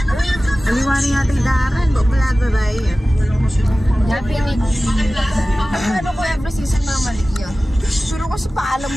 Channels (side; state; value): both; normal; correlation 0.96